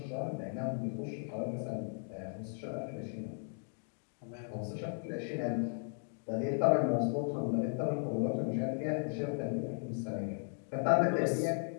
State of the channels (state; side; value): silent; right; 54 dB below the other